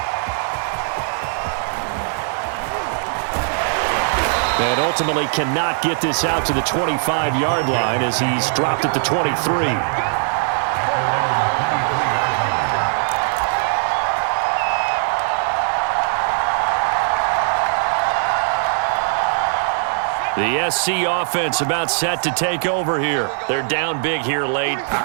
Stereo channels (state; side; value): silent; left; 56 dB below the other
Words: And ultimately cannot get this out to the 25-yard line as he's dropped at the 23. The SC offense about set to take over here. They're down big here late.